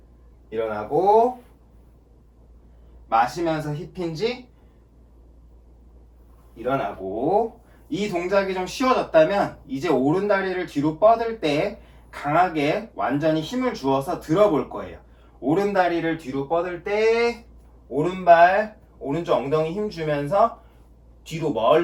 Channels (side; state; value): both; identical; correlation 1.00